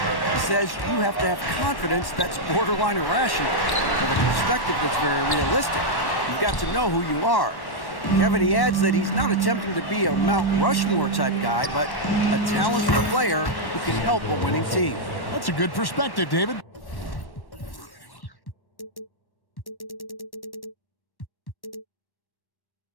says you have to have confidence that's borderline irrational, with a perspective that's very realistic. You've got to know who you are. Kevin, he adds that he's not attempting to be a Mount Rushmore type guy, but a talented player who can help a winning team. That's a good perspective, David.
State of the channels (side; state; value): right; late; 1.1 ms